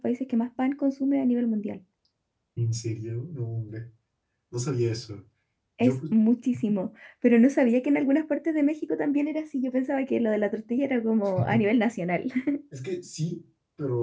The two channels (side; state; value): both; identical; correlation 1.00